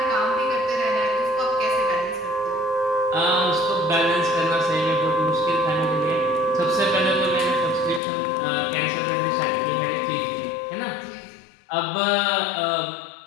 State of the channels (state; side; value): drops out; right; at 8.0 s